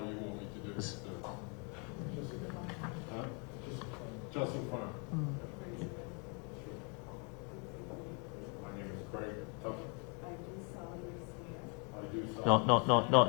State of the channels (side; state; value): right; quieter; 35.7 dB